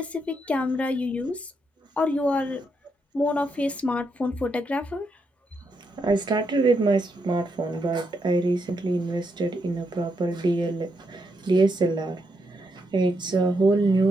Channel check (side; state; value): both; normal; correlation 0.80